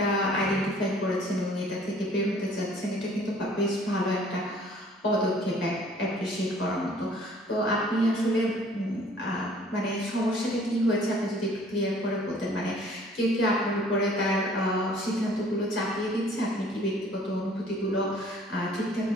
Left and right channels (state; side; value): normal; both; correlation 0.55